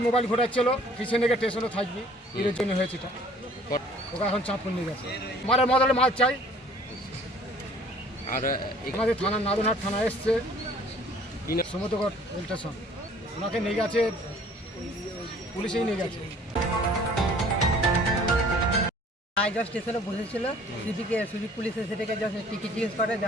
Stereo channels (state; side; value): normal; both; correlation 0.53